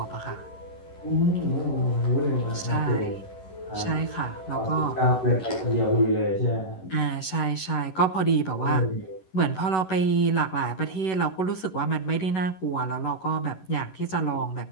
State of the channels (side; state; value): right; late; 11 ms